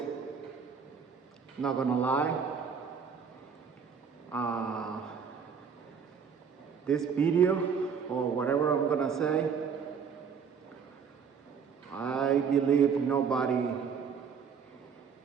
Not gonna lie. Uh, this video, or whatever I'm gonna say, I believe nobody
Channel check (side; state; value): left; quieter; 6.5 dB